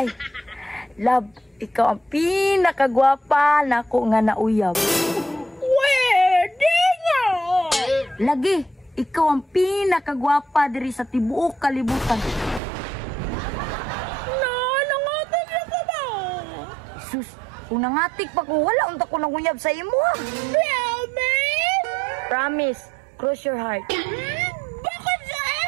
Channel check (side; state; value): left; drops out; at 12.6 s